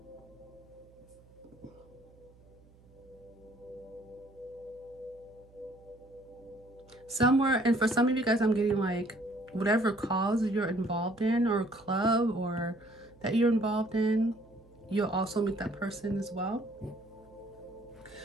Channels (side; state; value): right; noise; hum, 26 dB below the sound